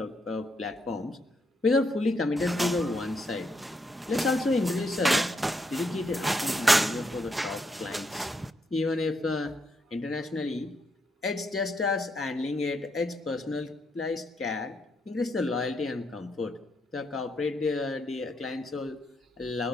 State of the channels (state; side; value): normal; both; correlation 0.77